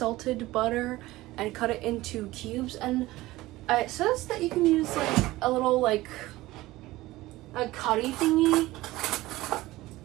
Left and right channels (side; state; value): left; quieter; 18.1 dB